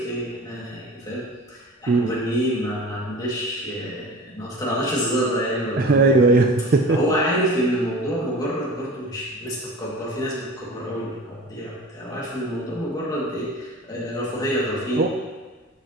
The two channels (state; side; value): normal; both; correlation 0.37